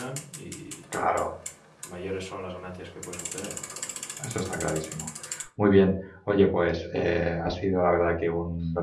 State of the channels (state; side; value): identical; both; correlation 1.00